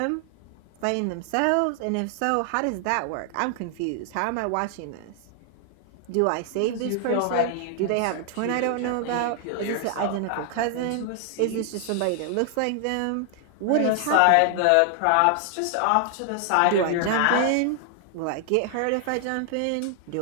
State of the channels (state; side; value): different; both; correlation 0.00